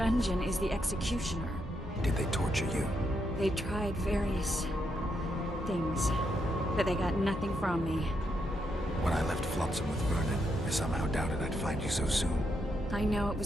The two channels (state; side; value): normal; both; correlation 0.80